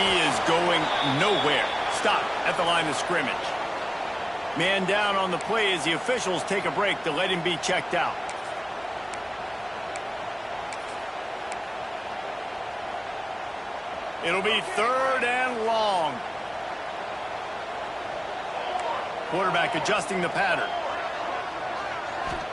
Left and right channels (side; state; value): both; identical; correlation 1.00